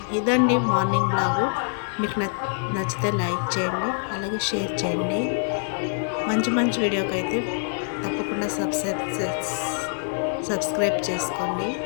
ఇదండి మార్నింగ్ బ్లాగు. మీకు నచ్చితే లైక్ చేయండి, అలాగే షేర్ చేయండి. మంచి మంచి వీడియోకి అయితే తప్పకుండా సబ్స్క్రైబ్ చేసుకోండి.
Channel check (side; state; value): right; silent; digital silence